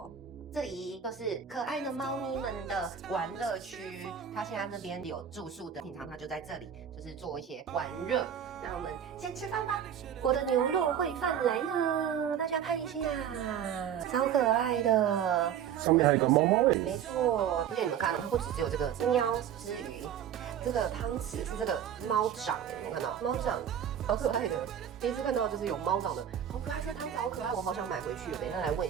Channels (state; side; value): quieter; left; 9.0 dB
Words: 这里就是可爱的猫咪们的玩乐区，它现在这边有住宿的，平常它就在这里，就是做一些玩乐。那我们先吃饭吧。我的牛肉烩饭来了，大家看一下，超可爱的。上面还有一个猫猫没错，而且你们看到它不只有这个喵之余，这个汤匙是这个猫掌，有没有看到？猫掌好可爱的，第一次看到就是有猫掌的，好可爱，这个汤匙好可爱，我好想买回去。等一下来问